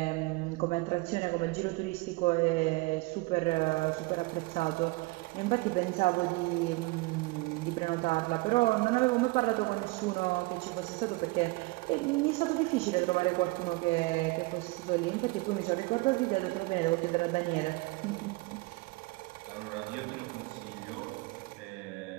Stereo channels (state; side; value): quieter; left; 23.8 dB